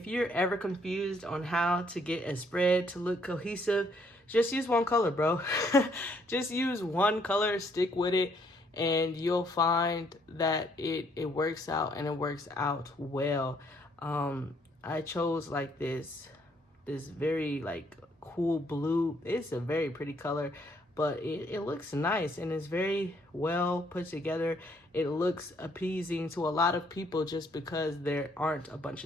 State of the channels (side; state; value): both; normal; correlation 0.68